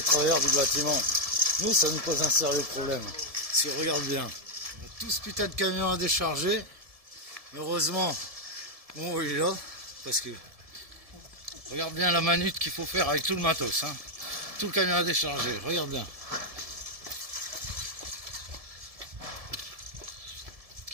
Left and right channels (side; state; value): left; late; 1.7 ms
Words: travailleurs du bâtiment, nous ça nous pose un sérieux problème. Si on regarde bien, tout ce putain de camion à décharger, heureusement, on est là, parce que regarde bien la manute qu'il faut faire avec tout le matos. Hein. Tout le camion à décharger, regarde bien.